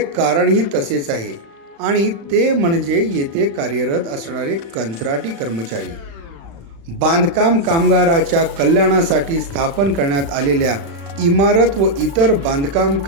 कारणही तसेच आहे आणि ते म्हणजे येथे कार्यरत असणारे कंत्राटी कर्मचारी। बांधकाम कामगाराच्या कल्याणासाठी स्थापन करण्यात आलेल्या इमारत व इतर बांधकाम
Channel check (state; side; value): late; left; 35 ms